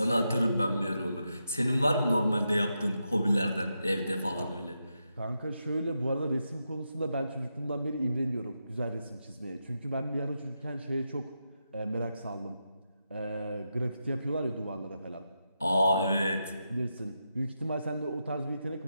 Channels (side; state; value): both; inverted; correlation -0.86